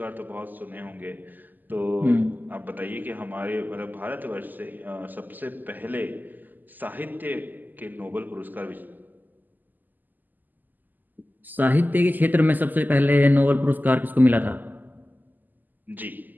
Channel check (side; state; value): left; late; 0.086 ms